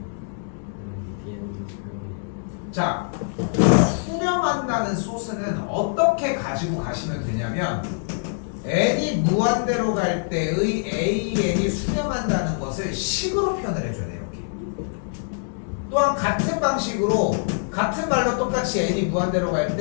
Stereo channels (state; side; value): silent; right; digital silence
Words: BN도 수렴해요. 자, 수렴한다는 소스는 어떻게 가지고 가시면 되냐면 n이 무한대로 갈 때의 AN이 수렴한다는 것을 식으로 표현을 해줘야 돼요. 이렇게. 또한 같은 방식으로 같은 말로 똑같이 n이 무한대로 갈